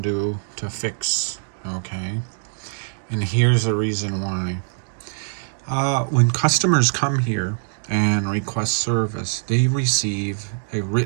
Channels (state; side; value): silent; left; digital silence